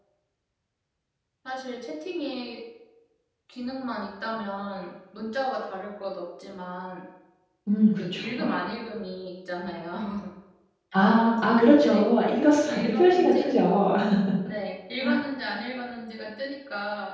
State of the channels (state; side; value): identical; both; correlation 1.00